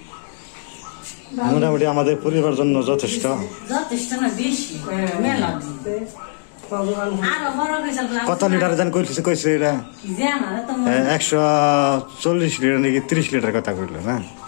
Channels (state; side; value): silent; right; digital silence